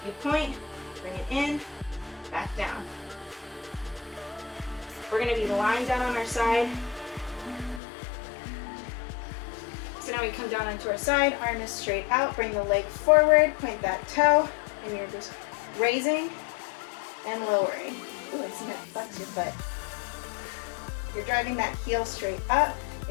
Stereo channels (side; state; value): right; drops out; at 7.8 s